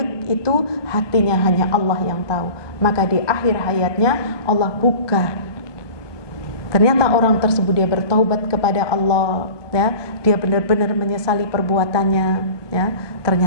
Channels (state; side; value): late; right; 1.2 ms